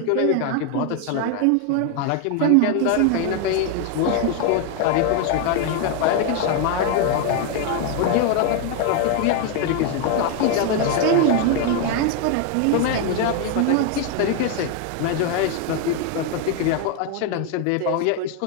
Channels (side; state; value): both; different; correlation 0.01